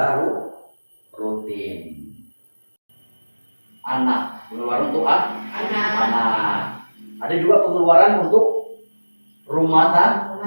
rutin. Anak, pengeluaran untuk anak. Ada juga pengeluaran untuk rumah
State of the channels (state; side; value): inverted; both; correlation -1.00